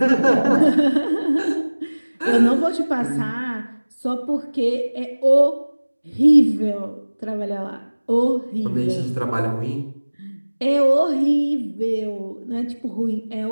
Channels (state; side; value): inverted; both; correlation -1.00